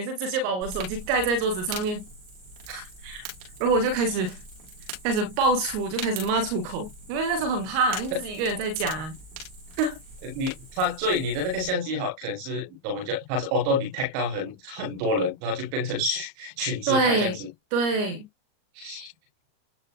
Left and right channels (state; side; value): late; left; 38 ms